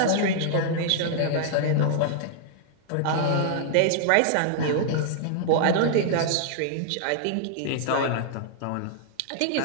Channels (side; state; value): both; different; correlation -0.01